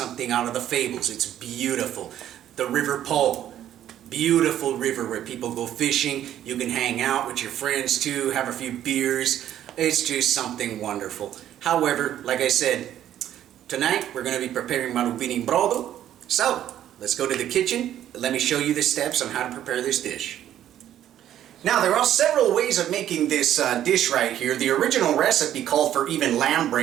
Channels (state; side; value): quieter; left; 11.4 dB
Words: out of the fables. It's beautiful. The River Po. Beautiful river where people go fishing. You can hang out with your friends too, have a few beers. It's just something wonderful. However, like I said, tonight we're going to be preparing Marubini brodo. So, let's go to the kitchen. Let me show you the steps on how to prepare this dish. Now, there are several ways of making this dish right here. The original recipe called for even lamb